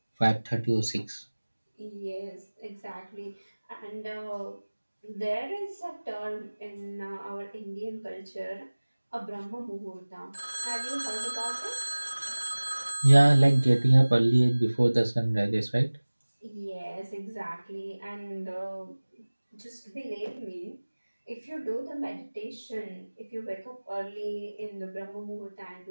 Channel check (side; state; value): both; inverted; correlation -1.00